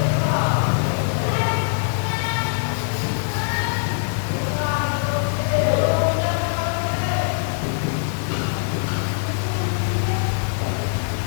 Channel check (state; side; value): silent; right; 64 dB below the other